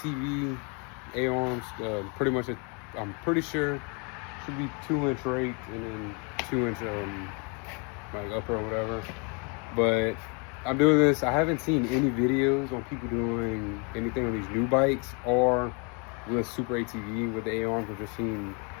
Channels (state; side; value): quieter; right; 34.3 dB